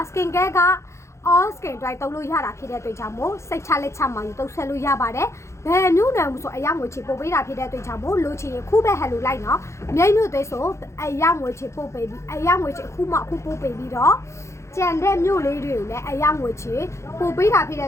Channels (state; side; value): late; right; 0.14 ms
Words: Skin Care က all skin dry သုံးလို့ရတာဖြစ်တဲ့အတွက်ကြောင့်မို့စိတ်ချလက်ချမှယူသုံးဆက်လို့ရပါတယ်ဘယ်မျိုးနံမှုဆိုအယောင်ငွေချေပို့ပေးတာဖြစ်တဲ့အတွက်ကြောင့်မို့လိုချင်ရင်ခုပဲဟဲလိုလိုက်နော်မြိတ်မျိုးသွေးဆိုအယောင်ငွေချေပို့ပေးပြီးအယောင်ငွေချေအခုမှအခုပို့ပေးပြီးတော့ကြံတဲ့မြို့လေးတွေကိုလည်းအယောင်ငွေချေပို့ပေးတာဖြစ်တဲ့